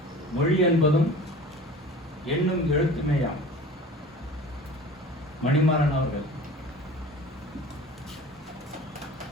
மொழி என்பதும் எண்ணும் எழுத்துமேயாம். மணிமாறன் அவர்கள்.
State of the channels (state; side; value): normal; both; correlation 0.40